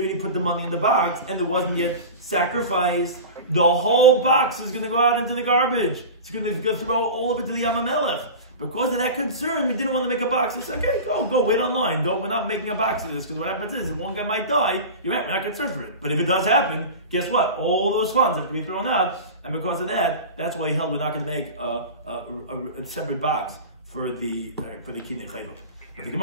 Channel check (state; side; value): inverted; both; correlation -0.31